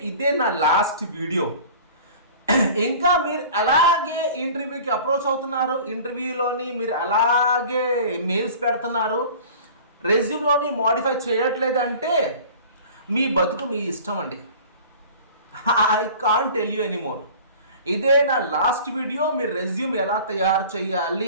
ఇదే నా లాస్ట్ వీడియో. ఇంకా మీరు అలాగే ఇంటర్వ్యూకి అప్రోచ్ అవుతున్నారు, ఇంటర్వ్యూలోని మీరు అలాగే మెయిల్స్ పెడుతున్నారు, రెజ్యూమ్లోని మోడిఫై చేయట్లేదంటే మీ బతుకు మీ ఇష్టం అండి. I can't tell you anymore. ఇదే నా లాస్ట్ వీడియో. మీరు రెజ్యూమ్ ఎలా తయారు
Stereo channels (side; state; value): both; inverted; correlation -0.43